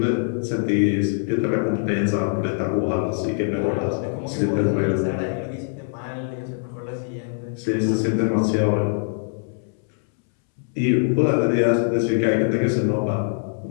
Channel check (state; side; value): silent; right; 63 dB below the other